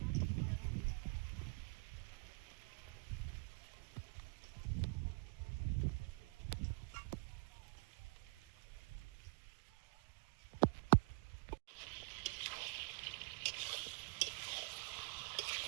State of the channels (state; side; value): quieter; left; 33.3 dB